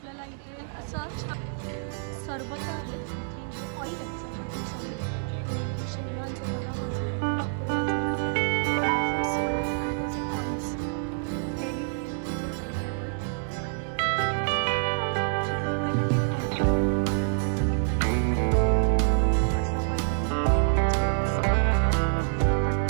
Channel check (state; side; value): silent; left; digital silence